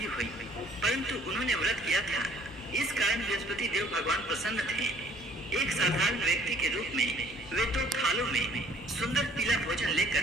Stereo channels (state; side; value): noise; right; hum, 24 dB below the sound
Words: हुई, परंतु उन्होंने व्रत किया था, इस कारण बृहस्पति देव भगवान प्रसन्न थे। एक साधारण व्यक्ति के रूप में वे 2 थालों में सुंदर पीला भोजन